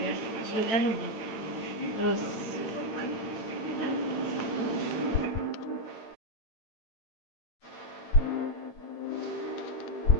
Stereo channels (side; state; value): right; late; 9.0 ms